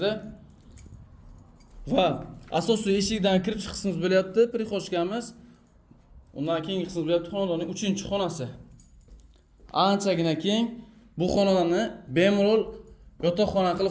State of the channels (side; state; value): both; identical; correlation 1.00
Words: va asosiy eshikdan kirish qismimiz bo'lyapti, prixoshkamiz. Undan keyingi qismimiz bo'lyapti xonadonning 3-xonasi. Anchagina keng. Bu xonadonni bemalol yotoqxona